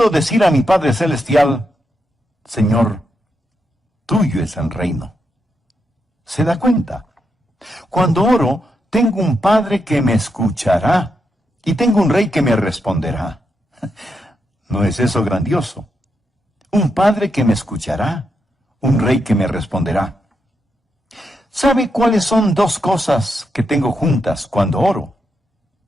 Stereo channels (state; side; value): normal; both; correlation 0.83